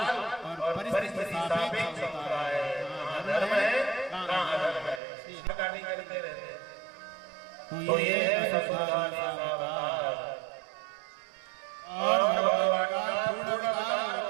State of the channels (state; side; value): drops out; left; at 5.0 s